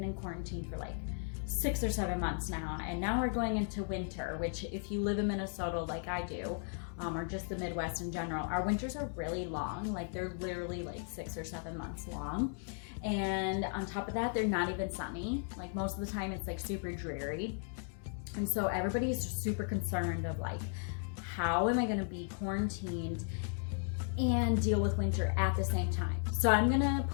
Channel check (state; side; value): silent; right; 54 dB below the other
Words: in quarantine for like 6 or 7 months now, and now we're going into winter, which if you live in Minnesota like I do, or just the Midwest in general, our winters are really long. Like they're literally like 6 or 7 months long. And on top of that, they're not even sunny. Like most of the time it's like super dreary. And so everybody is super concerned of like, how am I gonna be quarantined and deal with winter at the same time? So I'm gonna